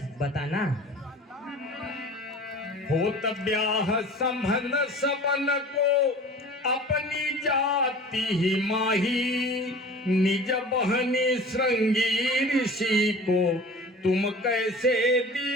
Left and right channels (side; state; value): both; normal; correlation 0.41